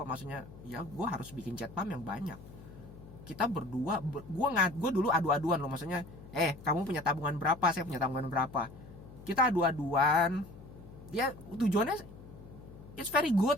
maksudnya ya gue harus bikin jet pump yang banyak. Kita berdua, gue dulu adu-aduan loh, maksudnya kamu punya tabungan berapa, saya punya tabungan berapa, kita adu-aduan. Ya tujuannya it's very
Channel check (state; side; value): noise; left; hum, 17 dB below the sound